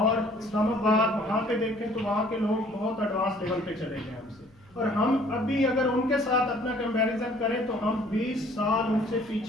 इस्लामाबाद, वहाँ पे देखें तो वहाँ के लोग बहुत एडवांस लेवल पे चले गए हमसे, और हम अभी अगर उनके साथ अपना कंपैरिजन करें तो हम 20 साल उनसे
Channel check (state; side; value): noise; left; hum, 29 dB below the sound